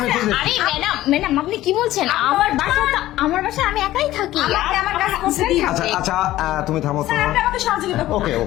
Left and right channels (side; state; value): right; quieter; 15.1 dB